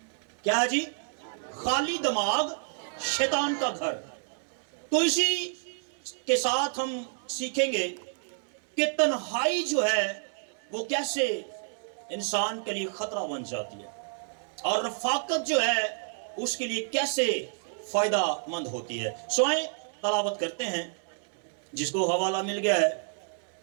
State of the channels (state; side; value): silent; left; digital silence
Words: کیا ہے جی؟ خالی دماغ شیطان کا گھر۔ تو اسی کے ساتھ ہم سیکھیں گے کہ تنہائی جو ہے وہ کیسے انسان کے لیے خطرہ بن جاتی ہے، اور رفاقت جو ہے اس کے لیے کیسے فائدہ مند ہوتی ہے۔ سوائیں تلاوت کرتے ہیں، جس کو حوالہ مل گیا ہے